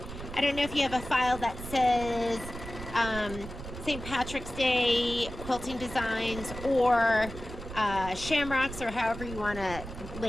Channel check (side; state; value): right; noise; rumble, 11 dB below the sound